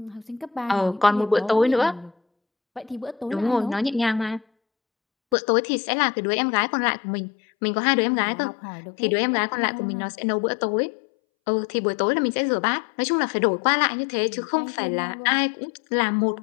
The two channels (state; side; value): drops out; right; at 5.4 s